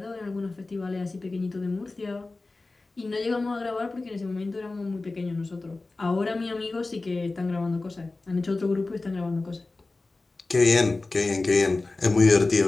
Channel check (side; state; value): right; quieter; 3.3 dB